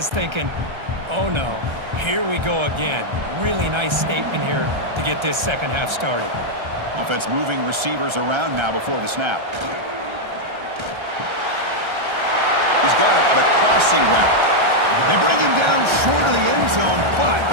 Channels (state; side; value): late; left; 1.3 ms